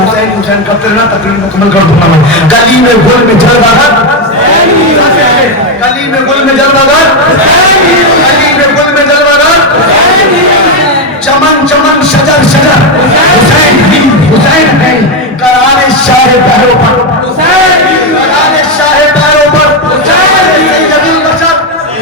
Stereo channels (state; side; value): normal; both; correlation 0.07